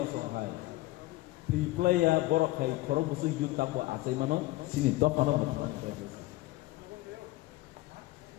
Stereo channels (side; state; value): right; quieter; 18.5 dB